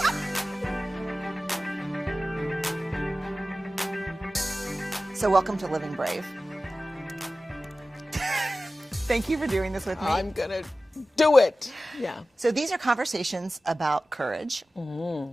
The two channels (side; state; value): both; normal; correlation 0.96